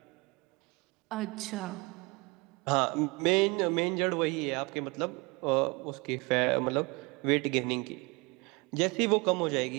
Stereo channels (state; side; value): quieter; left; 27.0 dB